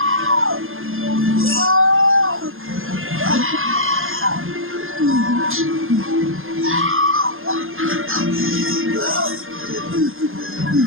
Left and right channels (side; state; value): left; late; 0.60 ms